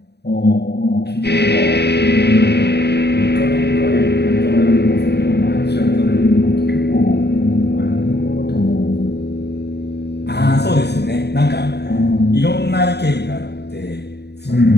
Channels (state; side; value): late; right; 0.48 ms